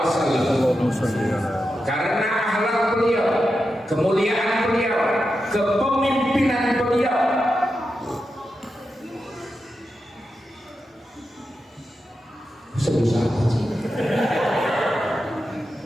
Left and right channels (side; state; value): both; normal; correlation 0.89